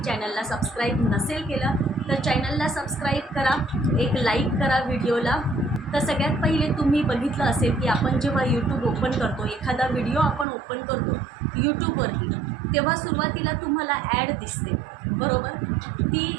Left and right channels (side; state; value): left; drops out; at 10.5 s